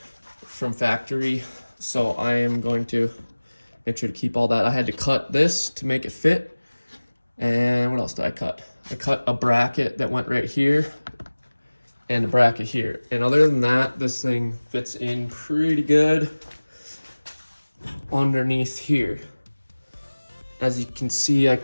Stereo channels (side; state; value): both; inverted; correlation -1.00